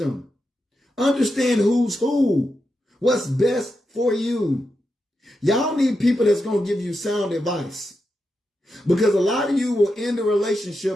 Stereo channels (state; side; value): normal; both; correlation 0.87